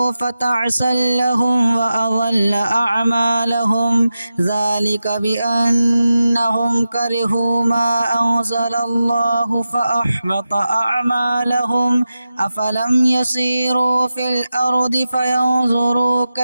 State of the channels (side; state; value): both; inverted; correlation -0.92